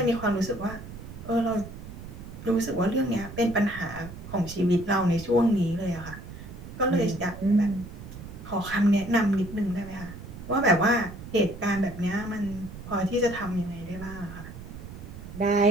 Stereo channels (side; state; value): right; noise; rumble, 13 dB below the sound